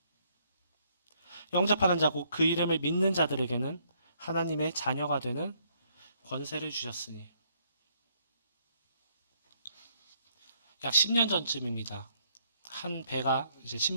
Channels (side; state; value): both; inverted; correlation -0.70